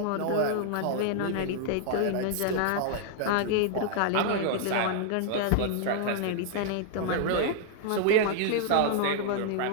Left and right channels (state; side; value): different; both; correlation 0.00